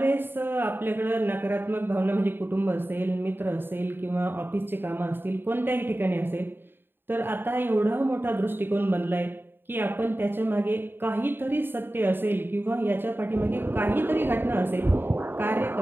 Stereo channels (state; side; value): late; left; 0.099 ms